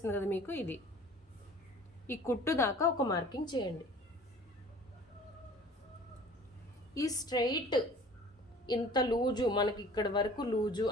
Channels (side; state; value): both; normal; correlation 0.47